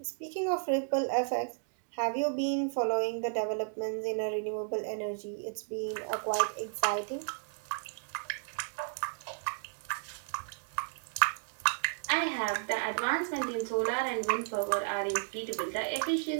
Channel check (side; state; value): left; silent; digital silence